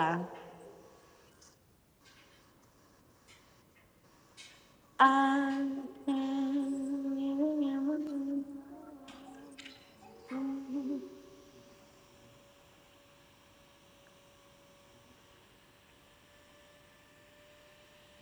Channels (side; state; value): both; identical; correlation 1.00